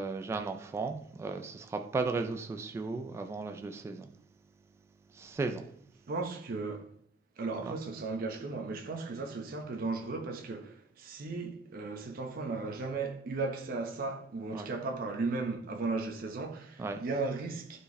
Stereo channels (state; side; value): quieter; left; 3.3 dB